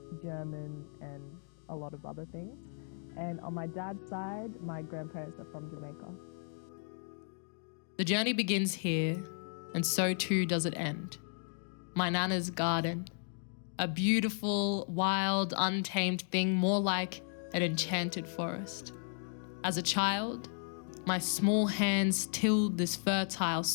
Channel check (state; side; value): silent; right; 55 dB below the other